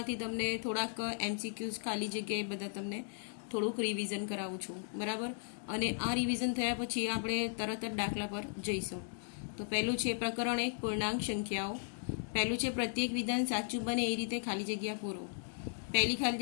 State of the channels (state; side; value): silent; right; digital silence